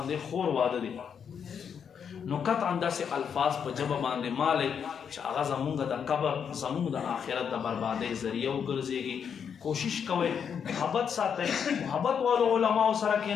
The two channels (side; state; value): right; quieter; 7.3 dB